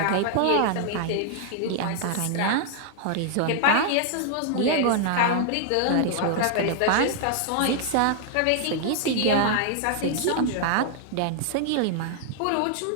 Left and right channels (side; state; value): both; different; correlation 0.00